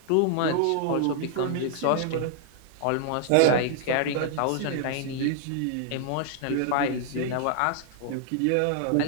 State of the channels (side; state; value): both; different; correlation -0.01